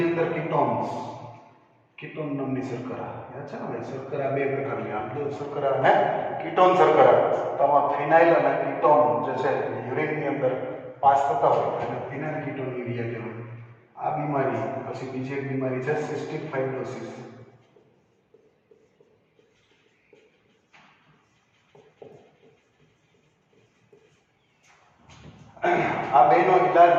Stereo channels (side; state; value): both; identical; correlation 1.00